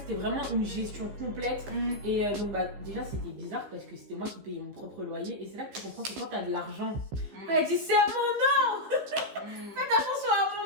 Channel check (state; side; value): late; left; 15 ms